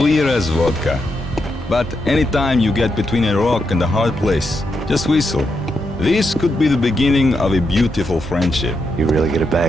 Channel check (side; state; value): both; normal; correlation 0.83